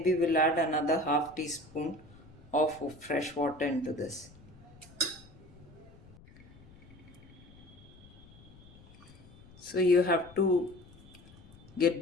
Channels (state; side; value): noise; left; rumble, 22 dB below the sound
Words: we'll add another half teaspoon of fresh water into this. So you have to get